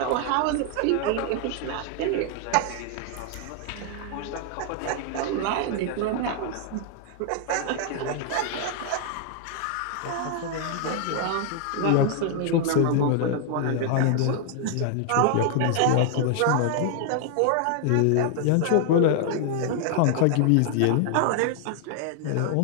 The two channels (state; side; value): different; both; correlation 0.00